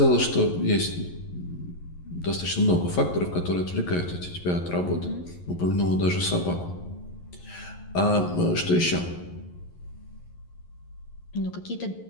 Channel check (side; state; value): right; late; 11 ms